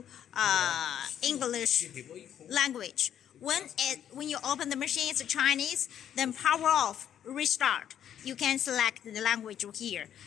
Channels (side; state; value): right; quieter; 9.9 dB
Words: English language. When you open the machine, it's Chinese, then power off, restart. You can select the language here.